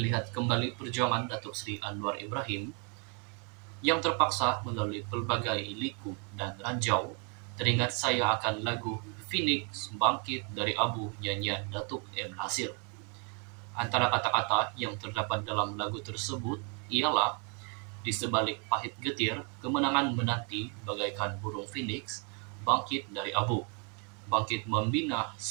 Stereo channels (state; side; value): quieter; left; 37.6 dB